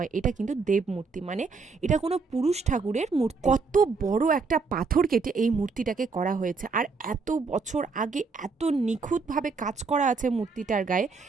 এটা কিন্তু দেব মূর্তি। মানে এটা কোনো পুরুষ ঠাকুরের মূর্তি। কত বড় একটা পাথর কেটে এই মূর্তিটাকে করা হয়েছে, আর এত বছর আগে এত নিখুঁতভাবে কাজ করা আছে মূর্তিটার গায়ে,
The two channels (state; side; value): quieter; left; 4.6 dB